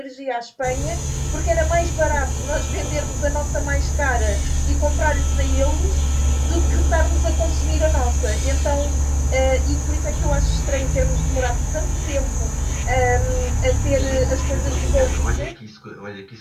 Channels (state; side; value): identical; both; correlation 1.00